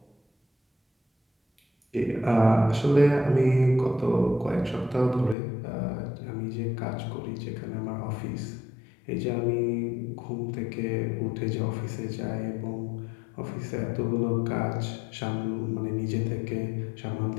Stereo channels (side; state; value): right; drops out; at 5.4 s